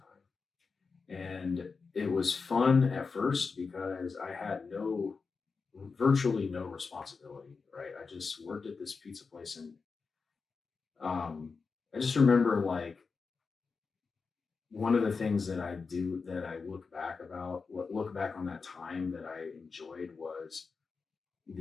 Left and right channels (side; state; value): right; quieter; 4.8 dB